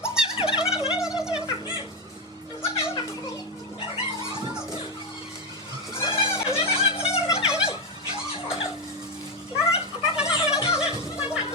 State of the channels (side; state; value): both; normal; correlation 0.09